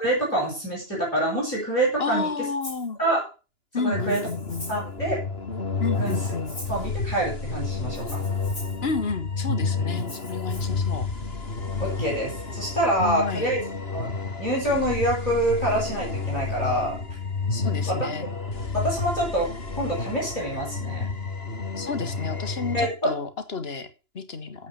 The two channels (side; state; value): right; late; 2.9 ms